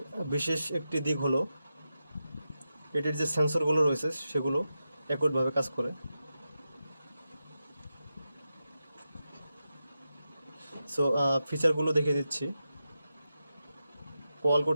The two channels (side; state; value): both; inverted; correlation -0.90